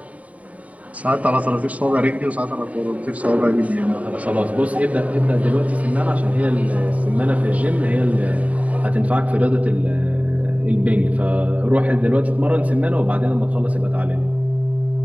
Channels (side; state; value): left; late; 0.069 ms